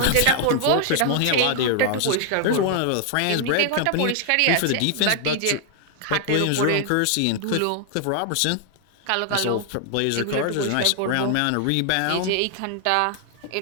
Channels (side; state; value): both; different; correlation 0.00